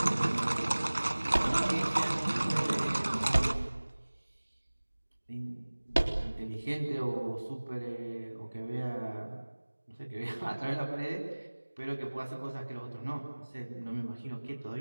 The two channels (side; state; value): both; inverted; correlation -1.00